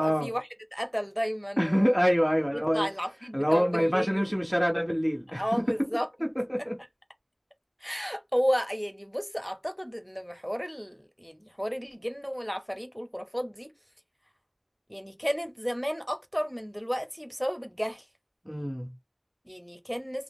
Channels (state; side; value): identical; both; correlation 1.00